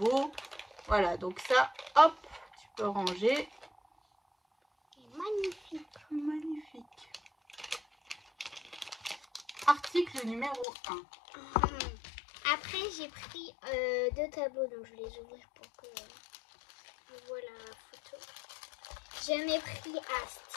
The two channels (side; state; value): right; drops out; at 10.7 s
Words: Voilà, donc ça, hop, tu peux ranger. Il est magnifique. Magnifique. Article numéro 1. Après, j'ai pris 2 tableaux, donc je vais les ouvrir pour que je vois la photo. J'en ai pris un